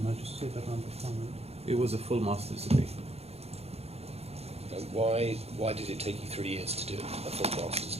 ماجستير برنامج كامل. It was a full master's degree. And why did it take you 3 years to do a full master's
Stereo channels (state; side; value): late; left; 0.30 ms